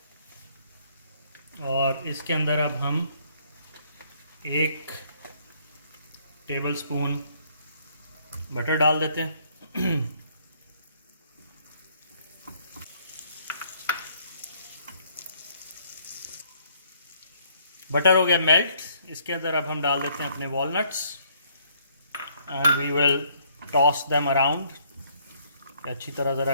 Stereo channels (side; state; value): both; inverted; correlation -0.65